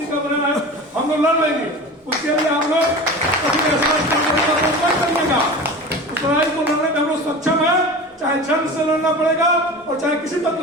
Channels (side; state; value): both; normal; correlation 0.33